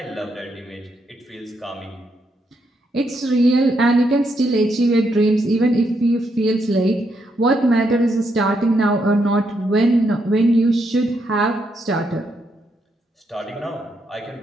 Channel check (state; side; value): normal; both; correlation 0.78